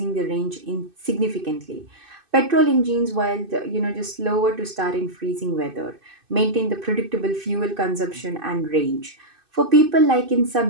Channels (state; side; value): late; left; 2.6 ms